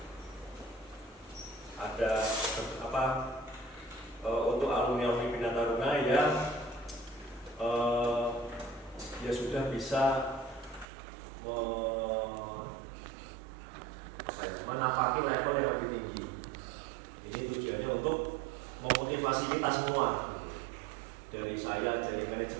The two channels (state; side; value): drops out; left; at 10.9 s